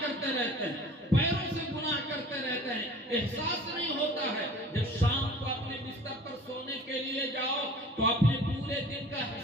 کرتے رہتے ہیں, پیروں سے گناہ کرتے رہتے ہیں. احساس نہیں ہوتا ہے. جب شام کو اپنے بستر پر سونے کے لیے جاؤ تو اپنے پورے دن کا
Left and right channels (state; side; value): normal; both; correlation 0.44